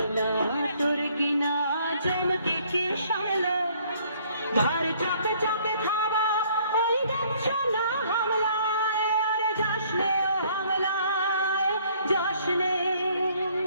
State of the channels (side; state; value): both; inverted; correlation -0.61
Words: দুর্গিনা জমকে কে সামলা, ঘর চাপে চাপে থাবা ওই দেখছো না হামলায়। আরে জশ্নে ও হামলায়, জশ্নে